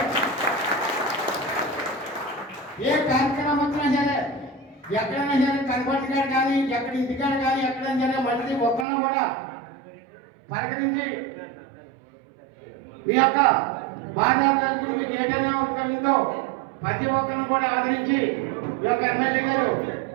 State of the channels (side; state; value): left; drops out; at 8.8 s